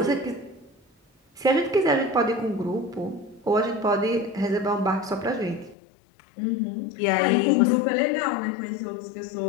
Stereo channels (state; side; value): drops out; right; at 5.8 s